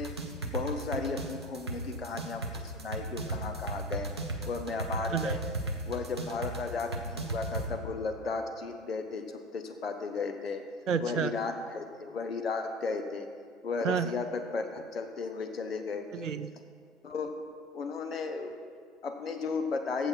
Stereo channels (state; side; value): normal; both; correlation 0.37